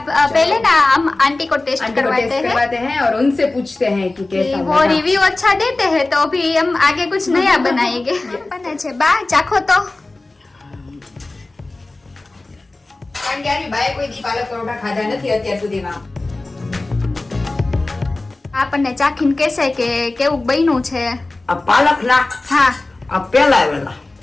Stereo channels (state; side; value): quieter; right; 3.1 dB